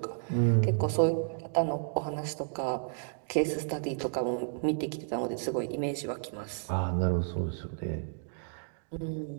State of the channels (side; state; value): left; silent; digital silence